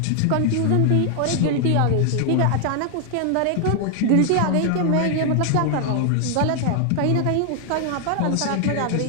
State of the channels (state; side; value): different; both; correlation 0.00